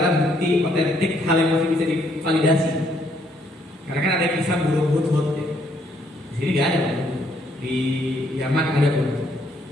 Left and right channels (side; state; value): both; normal; correlation 0.70